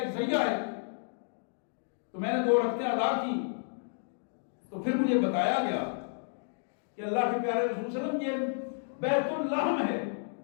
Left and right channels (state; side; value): silent; right; digital silence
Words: ذریعہ ہے۔ تو میں نے 2 رکعتیں ادا کی، تو پھر مجھے بتایا گیا کہ اللہ کے پیارے رسول صلی اللہ علیہ وسلم یہ بیت اللحم ہے،